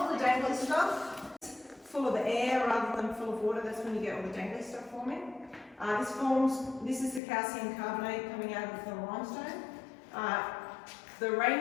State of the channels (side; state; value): right; drops out; at 7.2 s